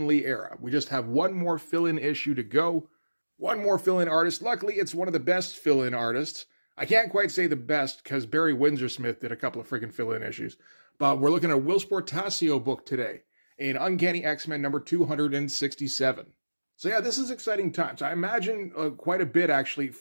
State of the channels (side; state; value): both; inverted; correlation -1.00